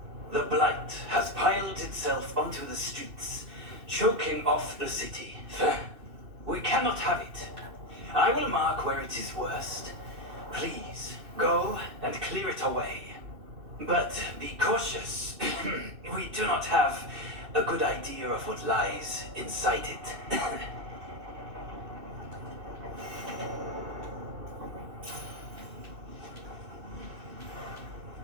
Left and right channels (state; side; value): late; left; 2.6 ms